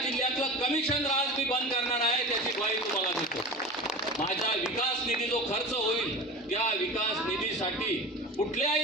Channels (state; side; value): normal; both; correlation 0.31